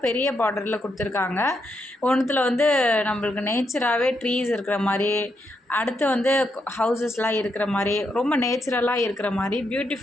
பெரிய பார்டரில் கொடுத்துருக்காங்க. ஒன்றுத்தில் வந்து நம்மளுக்கு நேச்சராகவே ட்ரீஸ் இருக்கிற மாதிரி, அடுத்து வந்து ஹவுசஸ்லாம் இருக்கிற மாதிரி, ரொம்ப நேச்சுரலாக இருக்கிற மாதிரி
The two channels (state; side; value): normal; both; correlation 0.80